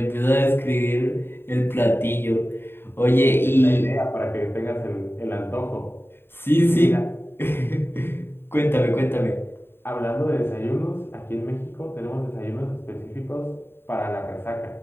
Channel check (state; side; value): late; right; 0.11 ms